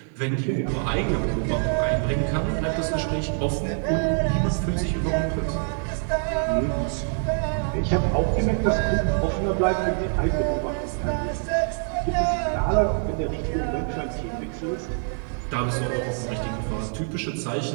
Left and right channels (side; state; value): left; silent; 56 dB below the other